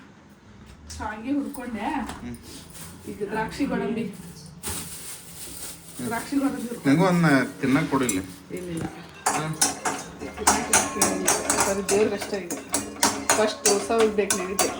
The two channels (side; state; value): both; identical; correlation 1.00